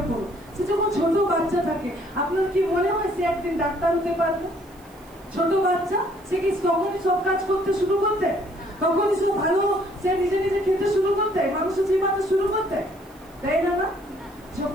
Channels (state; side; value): noise; right; hiss, 28 dB below the sound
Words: করুন, সে যখন ছোট বাচ্চা থাকে, আপনার কি মনে হয় সে একদিন ডাক্তার হতে পারবে? ছোট বাচ্চা সে কি তখনই সব কাজ করতে শুরু করতে? তখনই সে ভালো, সে নিজে নিজে খেতে শুরু করতে, মানুষের জীবনে শুরু করতে, তাই না? না,